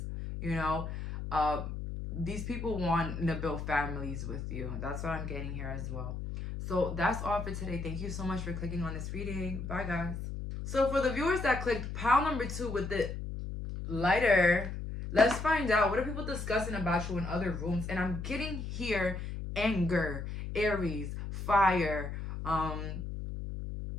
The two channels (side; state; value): left; noise; hum, 6 dB below the sound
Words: you know, these people want to build families with you. That's what I'm getting here as well. So that's all for today. Thank you so much for clicking on this reading. Bye, guys. So for the viewers that clicked pile number 2 with the lighter, let's find out, what are people discussing about you in other rooms? And I'm getting here anger, Aries, fire,